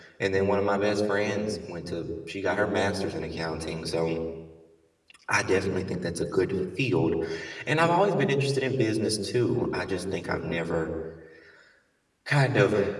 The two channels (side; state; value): both; identical; correlation 1.00